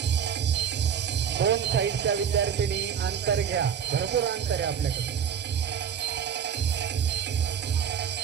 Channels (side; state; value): left; quieter; 8.0 dB